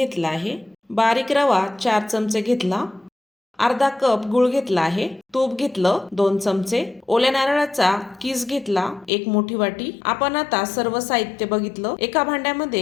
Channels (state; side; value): drops out; right; at 9.1 s